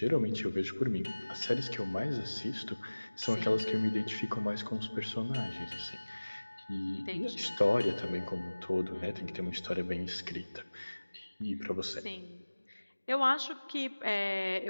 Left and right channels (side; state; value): both; inverted; correlation -1.00